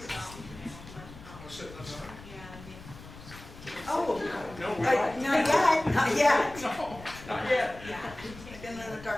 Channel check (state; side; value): noise; left; rumble, 17 dB below the sound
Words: Oh, No, we don't. not yet, not yet. No, not yet. I've been in the